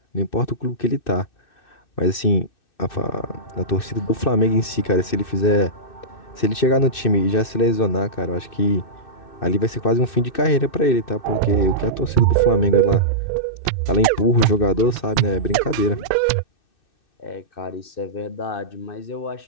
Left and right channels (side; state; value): right; late; 2.6 ms